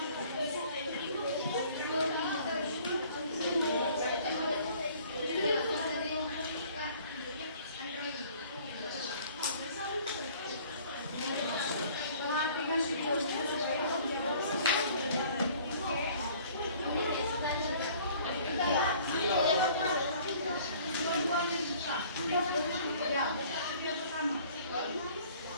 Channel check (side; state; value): both; inverted; correlation -0.53